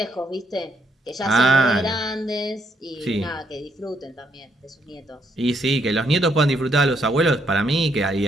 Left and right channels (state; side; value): normal; both; correlation 0.73